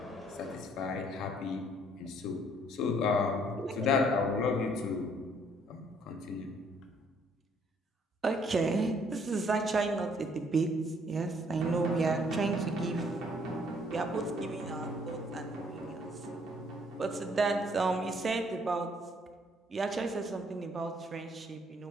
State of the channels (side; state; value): both; normal; correlation 0.64